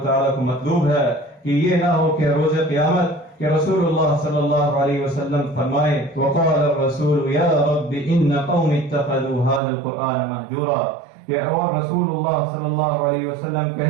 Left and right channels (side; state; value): left; drops out; at 9.6 s